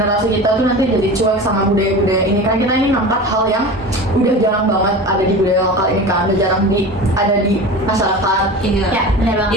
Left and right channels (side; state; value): both; normal; correlation 0.32